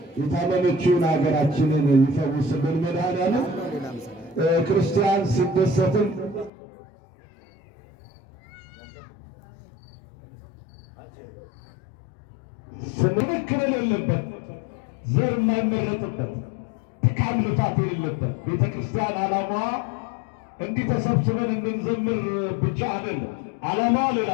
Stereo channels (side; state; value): right; drops out; at 6.5 s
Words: የታመመችውን ሀገራችንን ይፈውስልን። መድኃኔዓለም ክርስቲያን ሲደሰትም ስንክል የሌለበት ዘር የማይመረጥበት ድካም ልፋት የሌለበት ቤተ ክርስቲያን ዓላማዋ እንዲህ ተሰብስበን እንድንዘምር ብቻ አይደለም። ዓላማዋ ሌላ